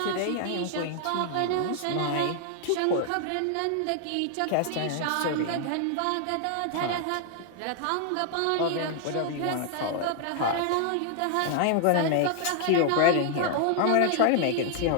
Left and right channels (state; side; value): different; both; correlation 0.00